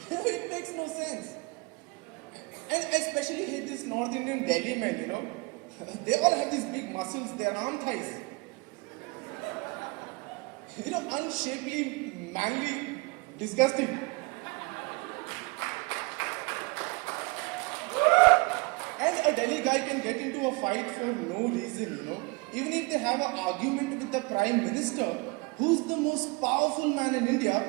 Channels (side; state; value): left; quieter; 26.4 dB